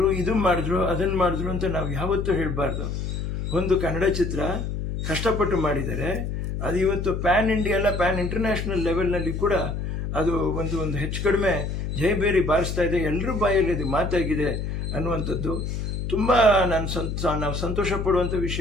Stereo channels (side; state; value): left; noise; hum, 3 dB below the sound